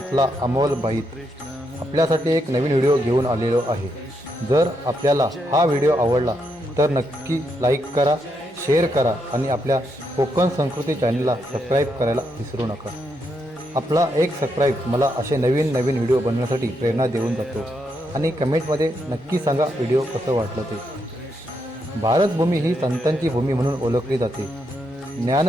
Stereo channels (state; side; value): normal; both; correlation 0.80